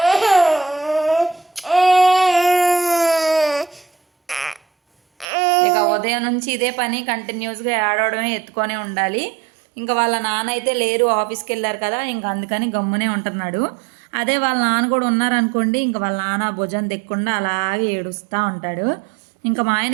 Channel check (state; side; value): drops out; left; at 5.2 s